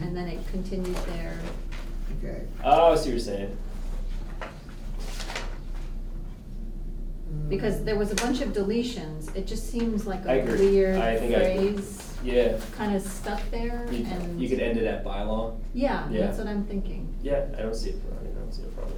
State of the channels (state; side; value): identical; both; correlation 1.00